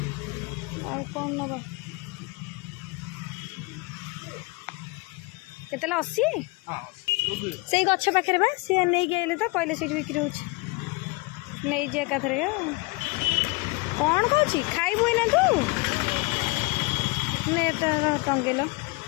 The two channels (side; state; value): right; quieter; 26.0 dB